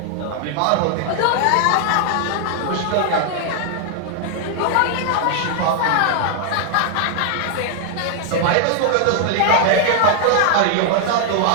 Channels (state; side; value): different; both; correlation 0.00